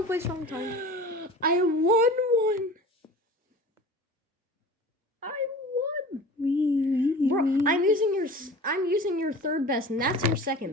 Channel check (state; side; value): normal; both; correlation 0.39